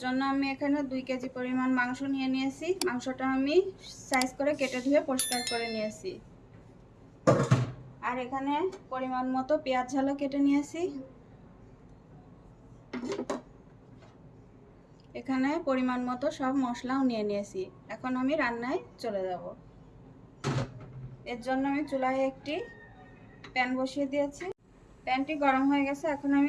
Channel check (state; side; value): identical; both; correlation 1.00